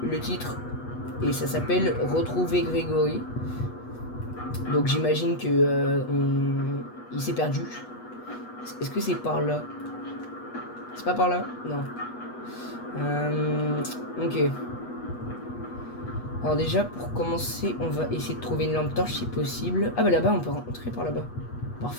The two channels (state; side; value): late; right; 8.2 ms